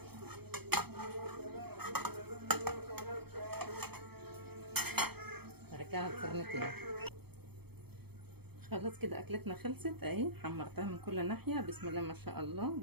ارجعها الفرن تاني. خلاص كده اكلتنا خلصت اهي، حمرتها من كل ناحيه بسم الله ما شاء الله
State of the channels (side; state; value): left; late; 0.97 ms